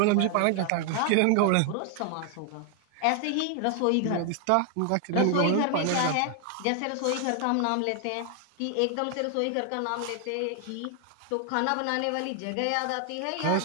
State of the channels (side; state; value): both; different; correlation 0.00